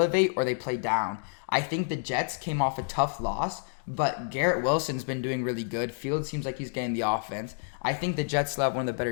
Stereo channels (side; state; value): right; silent; digital silence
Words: or they play down. I think the Jets came off a tough loss, but Garrett Wilson's been doing really good. Fields seems like he's getting the offense. I think the Jets still have one of the better